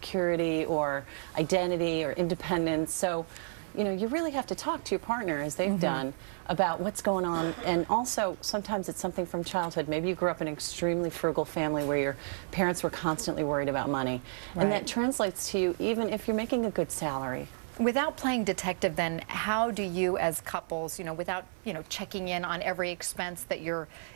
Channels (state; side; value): silent; left; 57 dB below the other